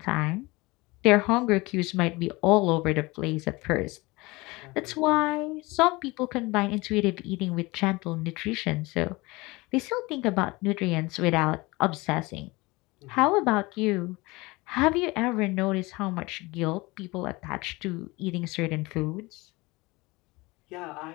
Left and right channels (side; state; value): right; quieter; 23.1 dB